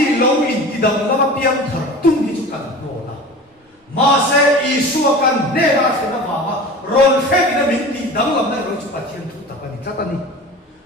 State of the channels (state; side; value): normal; both; correlation 0.36